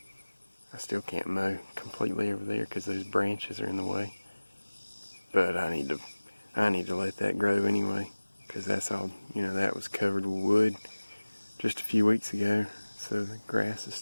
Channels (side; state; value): both; inverted; correlation -1.00